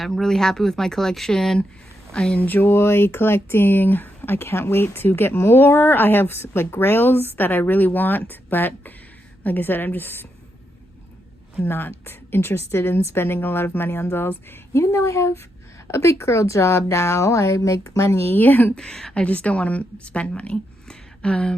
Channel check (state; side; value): normal; both; correlation 0.82